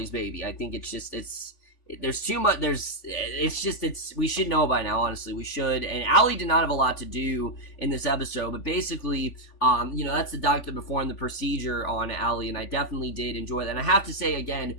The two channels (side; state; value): right; late; 3.5 ms